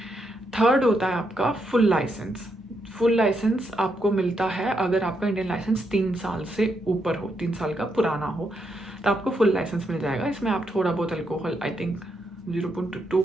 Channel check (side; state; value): both; normal; correlation 0.80